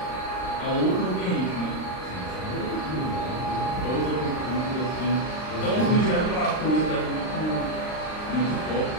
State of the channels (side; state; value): right; late; 39 ms